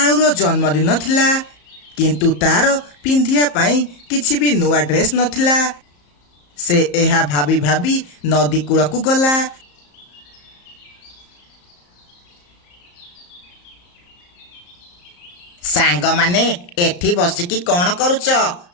ଜନ୍ମଦିନ ଥିଲା, କିନ୍ତୁ ତାର ପିନ୍ଧିବା ପାଇଁ କିଛି ବି ନୂଆ ଡ୍ରେସ୍ ନଥିଲା। ସେ ଏହା ଭାବି ଭାବି ନଦୀ କୂଳକୁ ଗଲା। ସାଙ୍ଗମାନେ ଏଠି ବସିକି କ'ଣ କରୁଛ?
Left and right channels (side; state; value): right; late; 34 ms